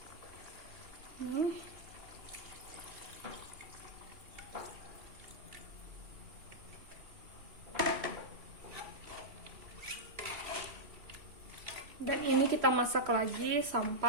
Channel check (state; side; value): late; left; 3.0 ms